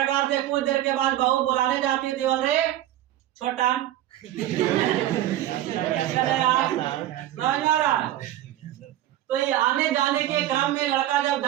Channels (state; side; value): quieter; left; 13.4 dB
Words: से कुछ देर के बाद बहू बुलाने जाती थी, बोल रहे छोटा समझ में आ रहा है। तो ये आने जाने के क्रम में लड़का जब